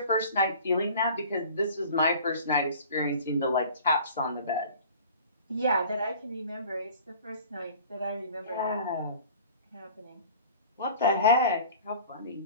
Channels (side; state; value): both; inverted; correlation -0.44